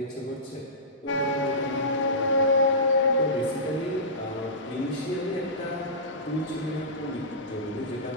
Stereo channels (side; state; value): both; normal; correlation -0.19